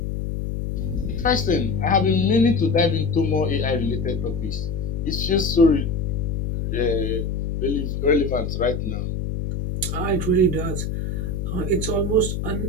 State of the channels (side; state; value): left; noise; hum, 3 dB below the sound